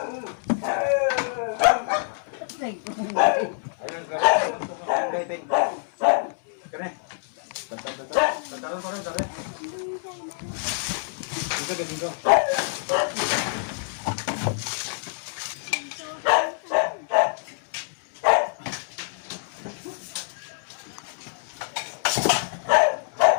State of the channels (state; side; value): silent; right; digital silence